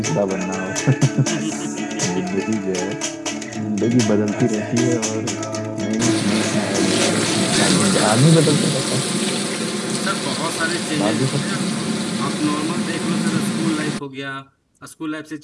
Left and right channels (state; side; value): identical; both; correlation 1.00